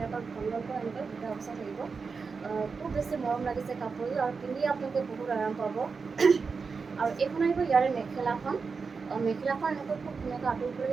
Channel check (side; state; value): left; quieter; 5.0 dB